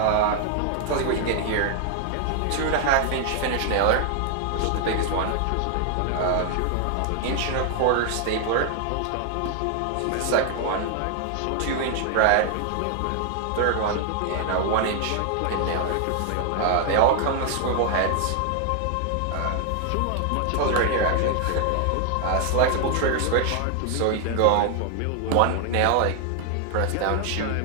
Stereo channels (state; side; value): different; both; correlation 0.00